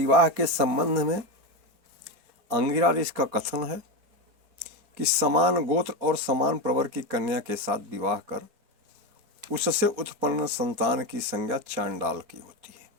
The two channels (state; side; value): late; left; 4.3 ms